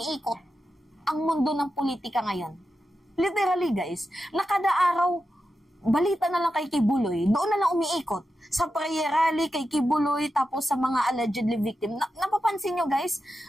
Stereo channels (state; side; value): normal; both; correlation 0.90